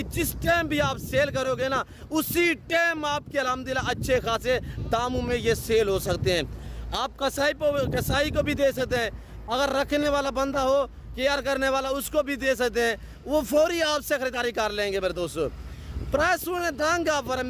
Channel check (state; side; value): identical; both; correlation 1.00